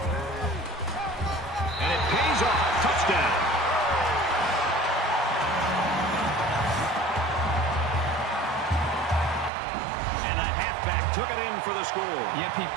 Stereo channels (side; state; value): left; drops out; at 9.5 s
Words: And it pays off. Touchdown. Took it in for the score. Yep, he